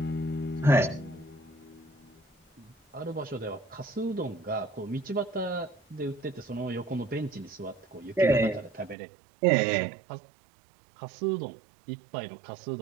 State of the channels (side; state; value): left; drops out; at 9.0 s